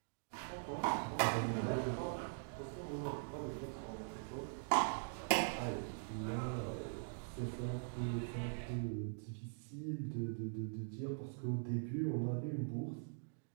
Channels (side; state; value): left; silent; digital silence